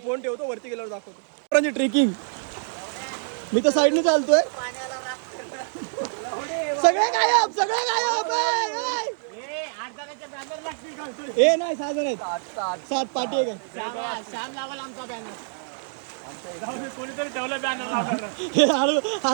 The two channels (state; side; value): silent; left; digital silence